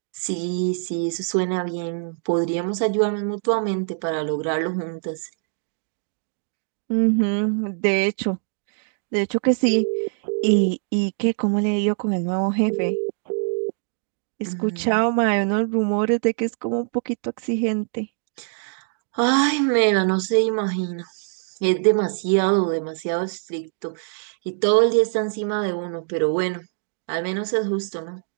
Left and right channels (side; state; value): left; silent; digital silence